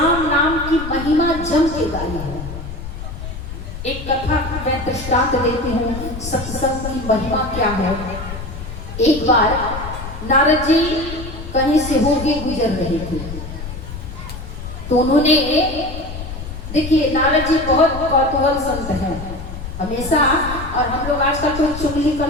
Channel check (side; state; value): left; noise; rumble, 9 dB below the sound